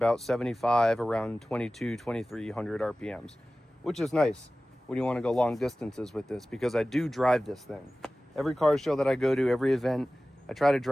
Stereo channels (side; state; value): both; normal; correlation 0.97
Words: 75, around 2,300 RPMs, which is nice when you want to go long distances with this, because I do drive this thing. Every car show that I go to, every event, I try to